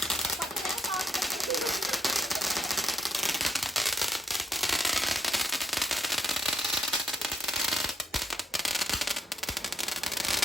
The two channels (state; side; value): normal; both; correlation 0.69